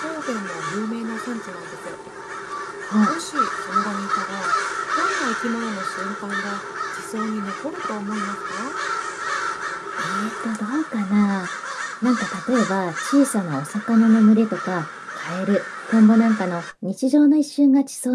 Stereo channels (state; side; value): identical; both; correlation 1.00